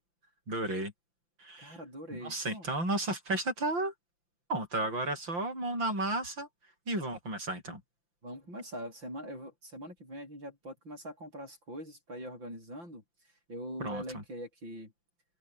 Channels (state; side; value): late; left; 5.8 ms